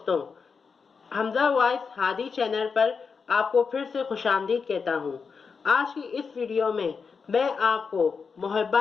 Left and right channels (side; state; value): right; quieter; 5.4 dB